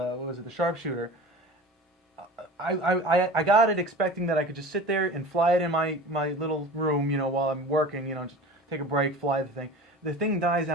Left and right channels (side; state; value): both; normal; correlation 0.36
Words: was it? The Sharpshooter. I got it expecting that I could just sit there and fly it in my little room, while I'm working, just take a break, fly the thing. The thing dies